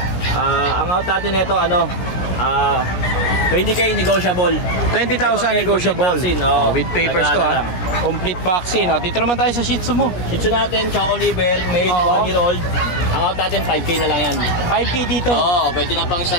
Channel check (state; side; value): late; right; 17 ms